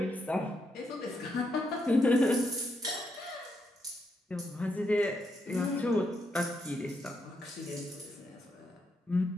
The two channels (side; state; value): both; normal; correlation 0.80